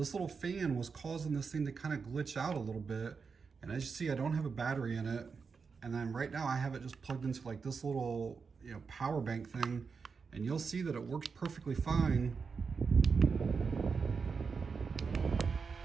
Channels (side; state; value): left; quieter; 5.3 dB